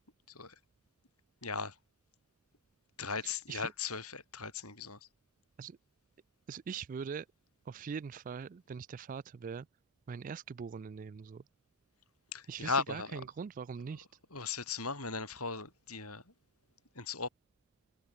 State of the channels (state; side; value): normal; both; correlation -0.05